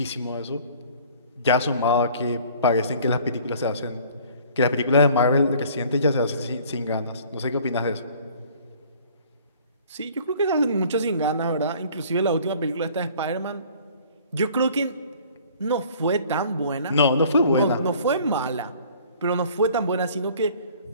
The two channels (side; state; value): both; inverted; correlation -0.52